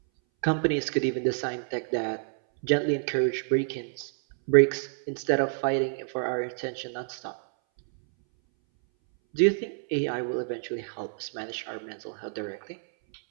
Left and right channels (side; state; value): left; silent; 59 dB below the other